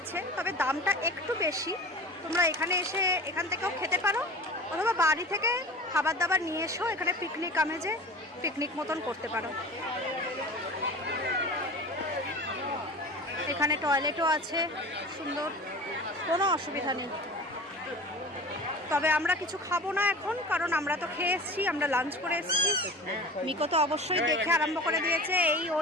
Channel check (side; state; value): both; normal; correlation 0.37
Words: তবে দামটা একটু বেশি। তোমরা এখানে এসে এখান থেকেও খেতে পারো, অথবা বাড়ি থেকে খাবার দাবার নিয়ে এসেও এখানে পিকনিক আমেজে পিকনিক মতন করতে পারো। এখানে টয়লেটও আছে, সুন্দর, কোনো অসুবিধা নেই। তবে আমরা কিছু খাবো না এখন, কারণ আমরা তো খেয়ে এসেছি, আমরা লাঞ্চ করে এসেছি। মিকো তো অবশ্যই দেখে আরম্ভ করে দিয়েছে, এই